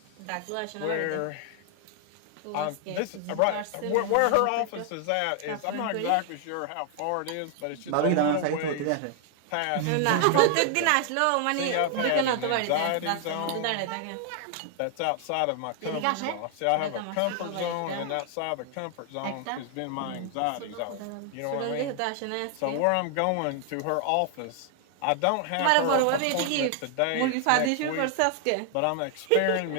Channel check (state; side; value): different; both; correlation 0.00